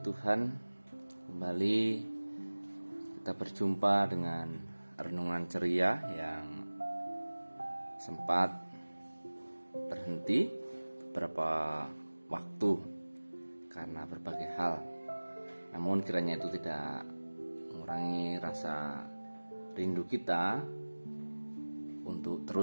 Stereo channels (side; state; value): both; inverted; correlation -1.00